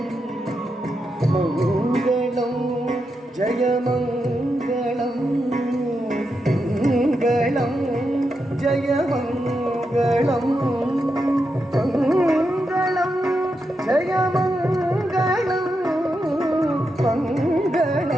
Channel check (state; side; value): normal; both; correlation 0.86